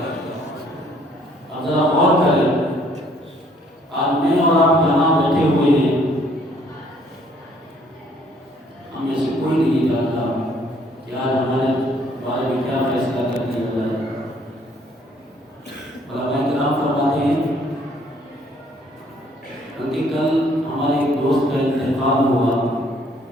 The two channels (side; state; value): both; normal; correlation 0.63